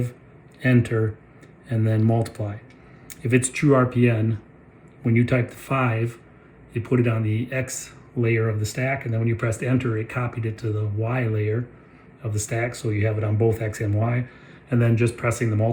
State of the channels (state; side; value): identical; both; correlation 1.00